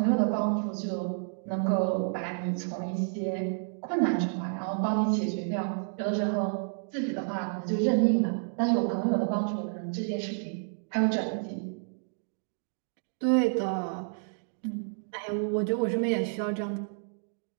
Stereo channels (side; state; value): left; silent; digital silence